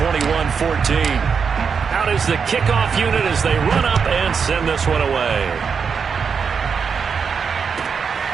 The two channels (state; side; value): quieter; left; 6.1 dB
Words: Out is the kickoff unit as they run up and send this one away.